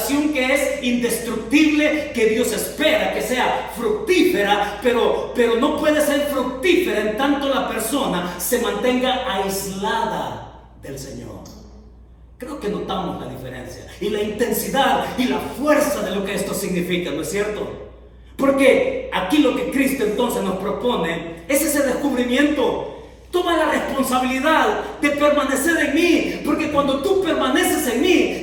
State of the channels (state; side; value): identical; both; correlation 1.00